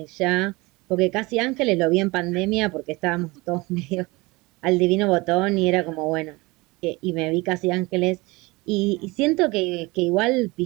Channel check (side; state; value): left; quieter; 23.5 dB